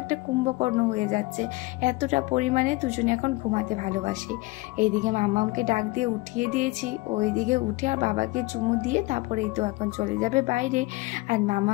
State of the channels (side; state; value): right; quieter; 22.2 dB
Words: একটা কুম্ভকর্ণ হয়ে যাচ্ছে, এতটা পরিমাণে দুজনে এখন ঘুমাতে ভালোবাসে। এইদিকে মামামকে ডাক দিয়ে উঠিয়ে দিয়েছি, ওইদিকে উঠে আর বাবাকে চুমু দিয়ে তারপরেই তো এখন চলে যাবে বাইরে। আর